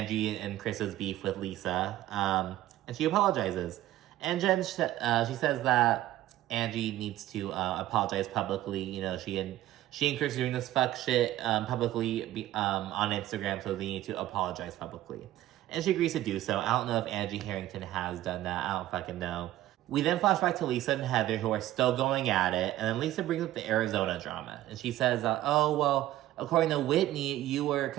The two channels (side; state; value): left; quieter; 14.4 dB